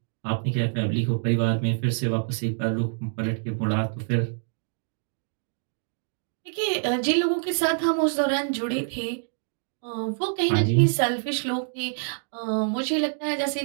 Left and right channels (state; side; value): silent; left; digital silence